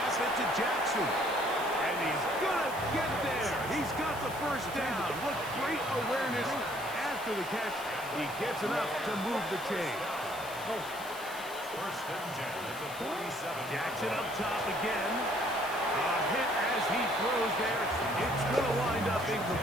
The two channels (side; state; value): left; noise; hiss, 15 dB below the sound